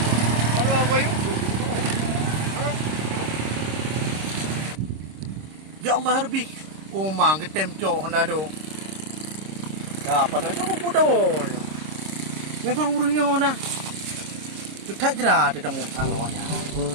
Aduh boy. Ya Allah harbi. Oh mang ketem cok Honda do. Dah apa nak cok pudah. Memang urungnya Honda. Tu tak jera ada temu awaknya.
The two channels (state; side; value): late; left; 26 ms